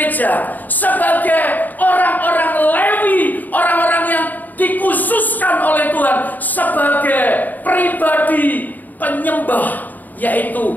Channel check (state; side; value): late; right; 0.084 ms